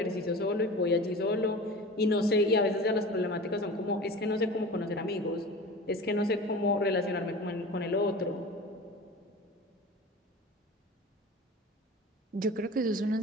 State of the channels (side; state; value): both; normal; correlation 0.35